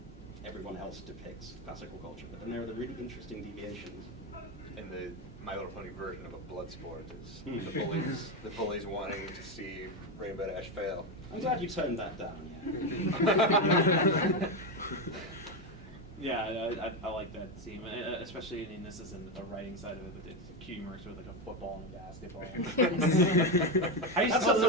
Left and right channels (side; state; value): both; normal; correlation 0.11